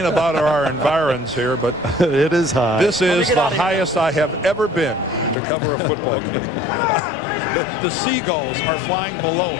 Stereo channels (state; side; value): drops out; right; at 5.4 s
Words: about our environs here, but it is high. This is the highest I have ever been to cover a football game. The seagulls are flying below